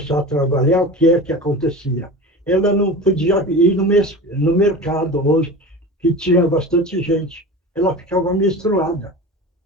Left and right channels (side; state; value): both; normal; correlation 0.32